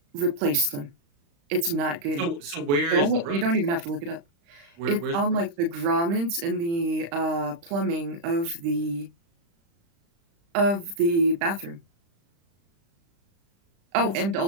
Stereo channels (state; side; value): late; left; 35 ms